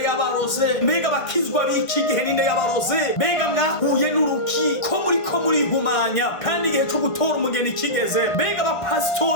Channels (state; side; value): late; right; 1.2 ms